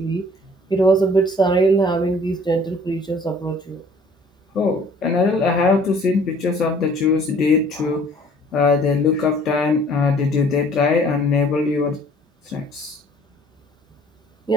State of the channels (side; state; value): both; normal; correlation 0.55